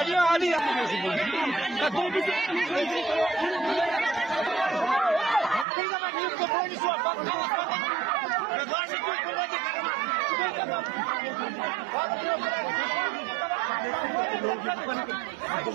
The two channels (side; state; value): left; drops out; at 5.7 s